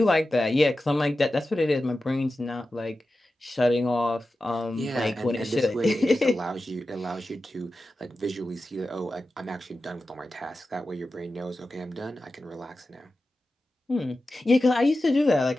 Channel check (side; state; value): both; normal; correlation 0.93